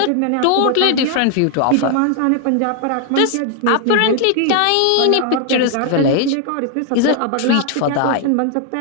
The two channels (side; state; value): both; different; correlation 0.00